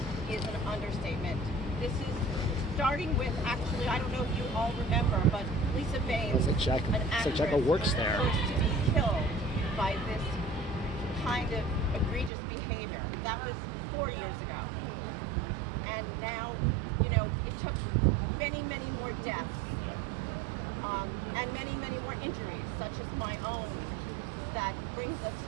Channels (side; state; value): left; drops out; at 12.3 s